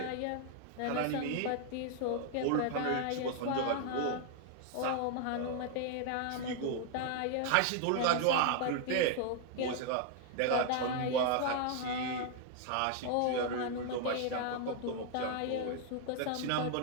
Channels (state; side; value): different; both; correlation 0.00